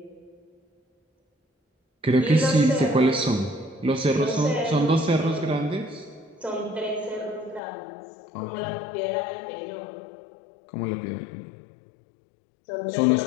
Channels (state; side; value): drops out; right; at 7.6 s